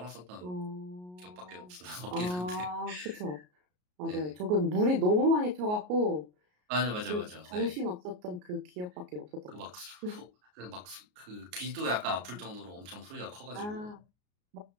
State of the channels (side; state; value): left; late; 33 ms